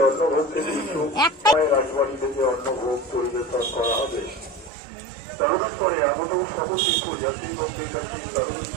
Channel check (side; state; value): left; drops out; at 4.7 s